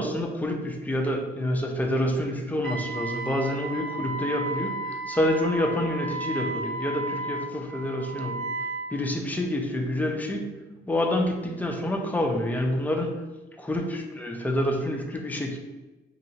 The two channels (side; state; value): both; normal; correlation 0.59